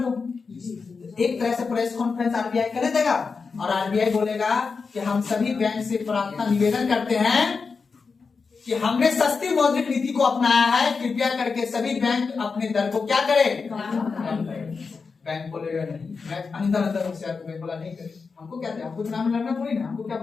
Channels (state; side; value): quieter; right; 4.9 dB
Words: दो। एक तरह से प्रेस कॉन्फ्रेंस आरबीआई कर देगा और आरबीआई बोलेगा कि हम सभी बैंक से प्रार्थना निवेदन करते हैं कि हमने सस्ती मौद्रिक नीति को अपनाया है, कृपया करके सभी बैंक अपने दर को क्या करें, बैंक बोलेगा नहीं, मैं अंदर बैंक बोला नहीं करे, हमको क्या, हमको चुनाव में लड़ना थोड़ी ना, हमको क्या